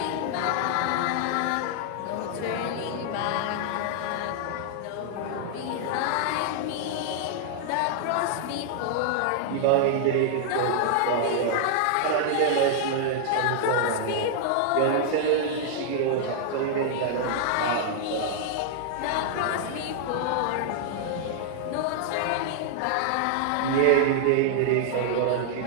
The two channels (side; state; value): both; different; correlation -0.01